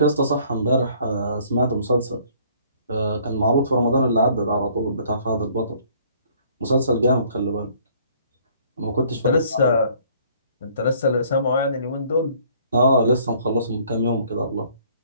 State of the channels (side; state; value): both; inverted; correlation -0.59